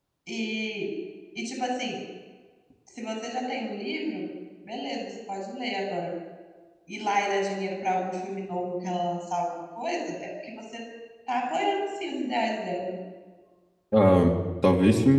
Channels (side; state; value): both; identical; correlation 1.00